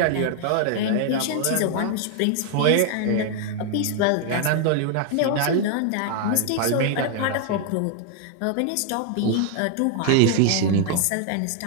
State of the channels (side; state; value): both; different; correlation 0.00